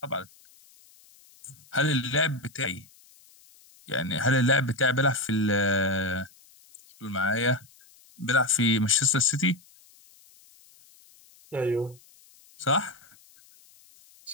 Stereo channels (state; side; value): noise; left; hiss, 27 dB below the sound